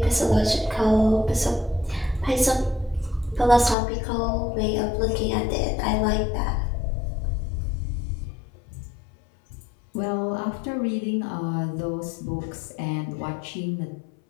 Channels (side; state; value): right; drops out; at 3.8 s